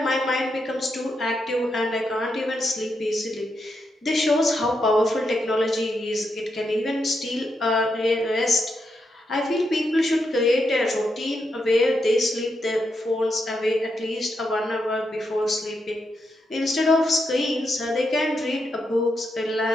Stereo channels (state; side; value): normal; both; correlation 0.83